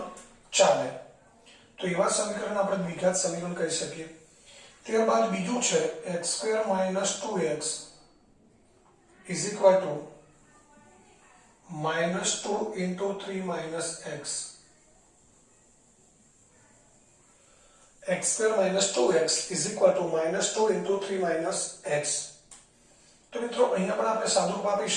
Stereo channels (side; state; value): both; identical; correlation 1.00